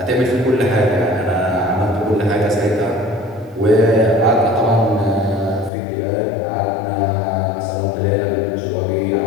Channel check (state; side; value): drops out; right; at 5.7 s